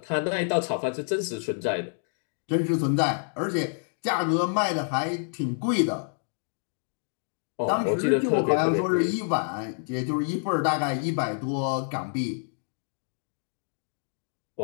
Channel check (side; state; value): right; silent; digital silence